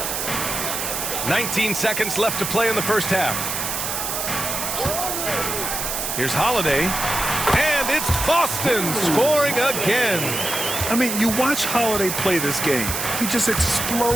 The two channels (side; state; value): right; noise; hiss, 3 dB below the sound